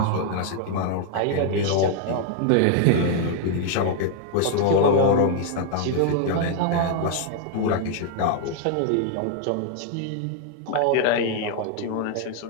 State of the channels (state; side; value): different; both; correlation 0.00